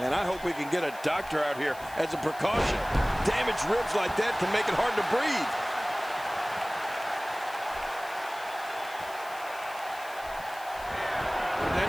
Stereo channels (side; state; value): left; noise; hiss, 19 dB below the sound